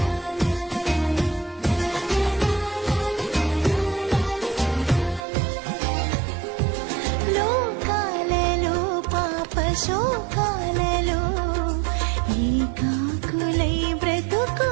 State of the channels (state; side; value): drops out; left; at 5.2 s